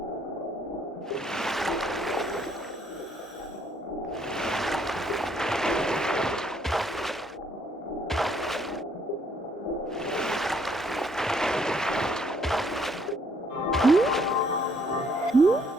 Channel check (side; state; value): both; normal; correlation 0.67